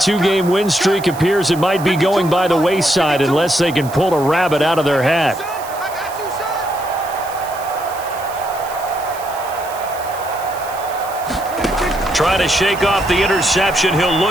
win streak appears it might be going by the wayside unless they can pull a rabbit out of their hat. Trying to shake off the interception, he'll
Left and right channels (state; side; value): noise; right; hiss, 17 dB below the sound